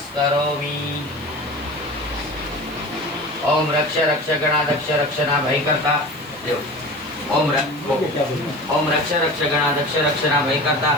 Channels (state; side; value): noise; right; hiss, 23 dB below the sound